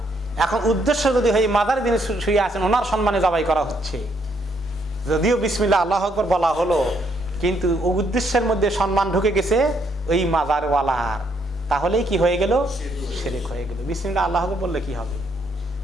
এখন উদ্দেশ্য যদি হয় মাজারে যিনি শুয়ে আছেন ওনার সম্মানে জবাই করা হচ্ছে, যদিও বিসমিল্লাহ আল্লাহু আকবার বলা হলো, কিন্তু উদ্দেশ্যের মধ্যে সম্মান ঢুকে গেছে ওই মাজারওয়ালার, তাহলেই কি হয়ে গেল? শিরক হয়ে গেল। বিসমিল্লাহ আল্লাহু আকবার বললে কি হবে?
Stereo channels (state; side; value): normal; both; correlation 0.72